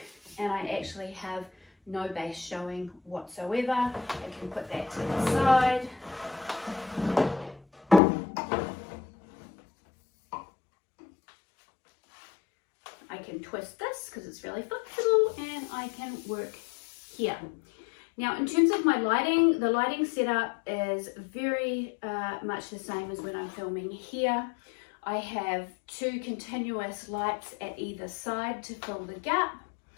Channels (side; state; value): right; drops out; at 8.0 s